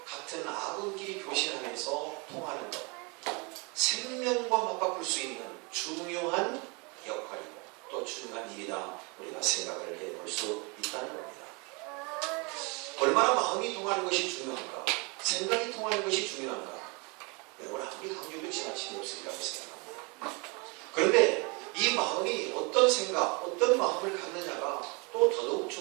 같은 아군끼리 교신하면서 통하는 것, 생명과 맞바꿀 수 있는 중요한 역할이고 또 중요한 일이다 우리가 생각을 해볼 수 있다는 겁니다. 얼마나 마음이 통하는 것이 중요한가, 생각이 통하는 것이 중요한가, 여러분 아무리 강조도 지나침이 없으리라고 생각합니다. 그런데 이 마음이 어떤 생각, 어떤 마음을 갖느냐가 또 더더욱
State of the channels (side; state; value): left; quieter; 30.2 dB